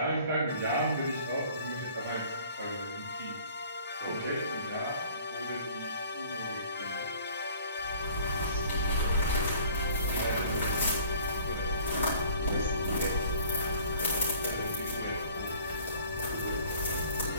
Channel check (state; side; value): inverted; both; correlation -0.51